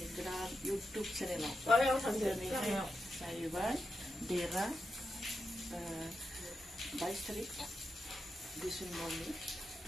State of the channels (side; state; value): both; normal; correlation 0.87